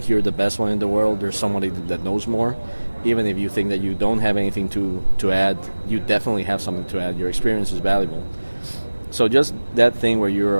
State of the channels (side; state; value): both; inverted; correlation -1.00